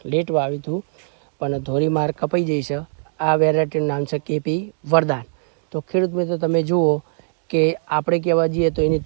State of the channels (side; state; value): left; silent; digital silence